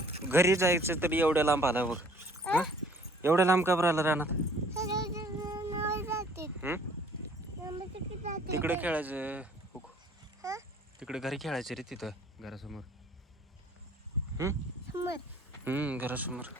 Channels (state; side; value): normal; both; correlation 0.56